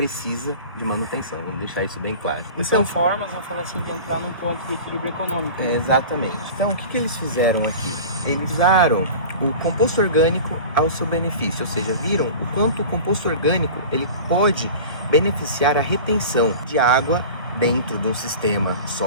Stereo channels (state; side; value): inverted; both; correlation -0.36